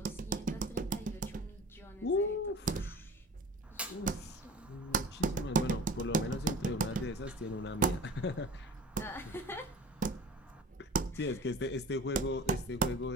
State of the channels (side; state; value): both; normal; correlation 0.39